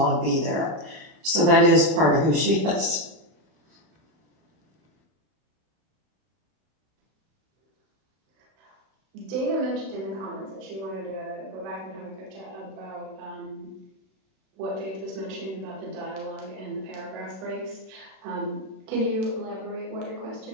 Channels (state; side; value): late; left; 31 ms